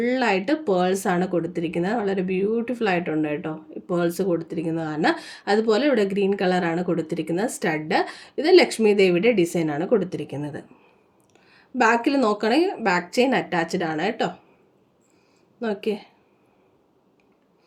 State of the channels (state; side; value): identical; both; correlation 1.00